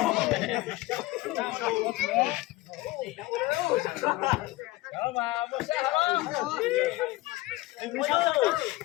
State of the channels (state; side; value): quieter; right; 19.4 dB